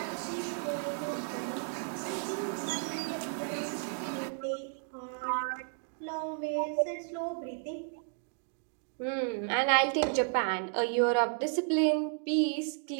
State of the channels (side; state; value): left; silent; 56 dB below the other